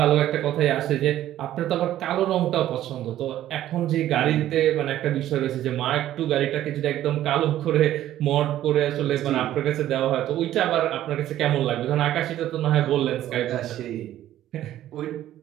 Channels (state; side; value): quieter; left; 12.9 dB